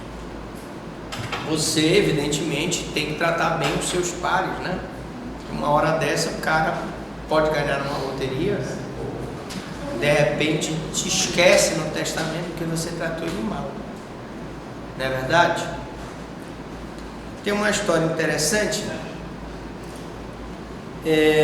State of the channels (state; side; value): identical; both; correlation 1.00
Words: Você, evidentemente, tem que tratar bem os seus pares, né? Uma hora dessa, o cara pode ganhar numa loteria, ou de repente te esquece no testamento porque você tratou ele mal. Não é verdade? Tem uma história interessante,